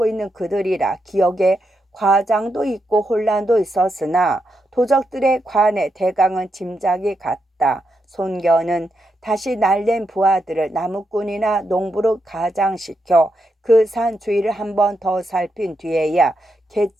있는 그들이라 기억에 과장도 있고 혼란도 있었으나 도적들의 관에 대강은 짐작이 갔다. 손견은 다시 날랜 부하들을 나무꾼이나 농부로 가장시켜 그 산 주위를 한 번 더 살핀 뒤에야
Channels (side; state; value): both; normal; correlation 0.83